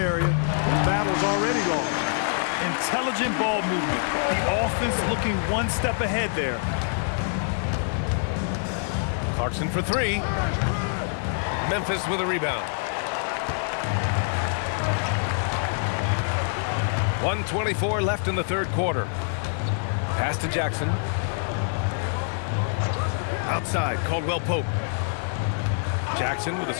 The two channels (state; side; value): silent; right; digital silence